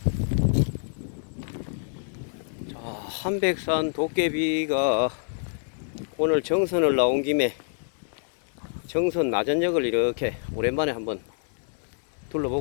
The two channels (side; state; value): right; silent; digital silence